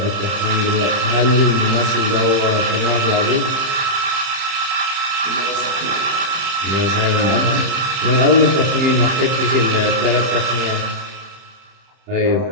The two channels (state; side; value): late; left; 30 ms